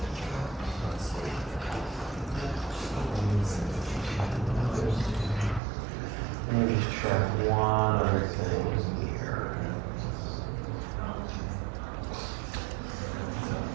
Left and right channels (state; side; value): drops out; left; at 5.6 s